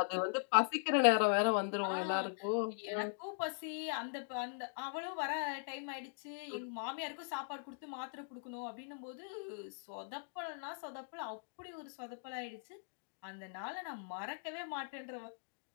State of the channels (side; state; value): right; silent; digital silence